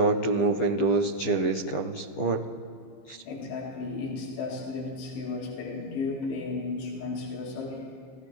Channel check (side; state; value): right; late; 15 ms